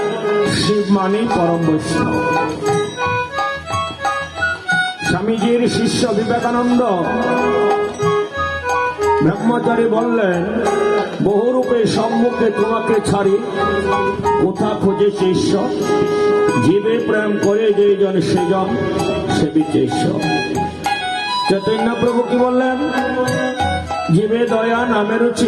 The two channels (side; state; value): both; identical; correlation 1.00